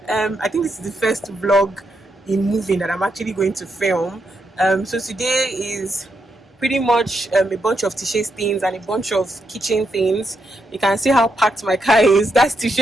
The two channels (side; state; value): both; normal; correlation 0.81